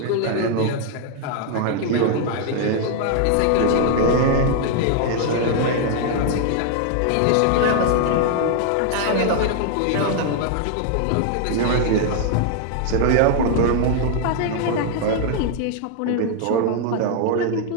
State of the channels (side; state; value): both; different; correlation 0.00